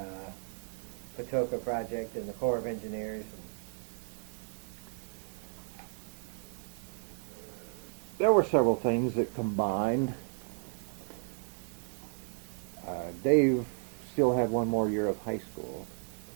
Patoka Project and the Corps of Engineers? There were several things that combined. Dave still had one more year of high school,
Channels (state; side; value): silent; left; 55 dB below the other